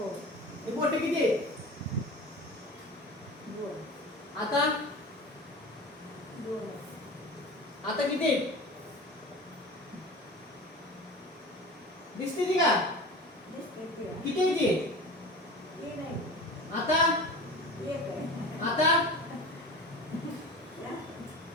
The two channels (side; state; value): both; normal; correlation 0.35